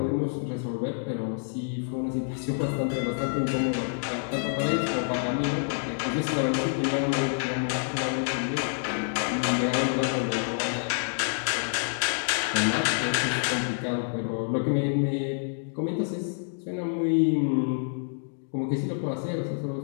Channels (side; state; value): right; silent; digital silence